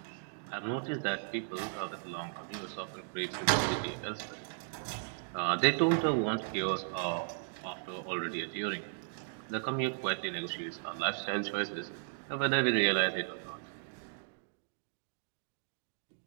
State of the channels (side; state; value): left; silent; digital silence